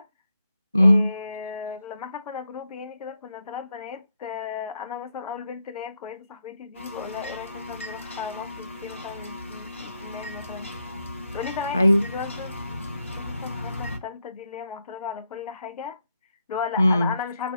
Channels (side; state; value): both; inverted; correlation -0.80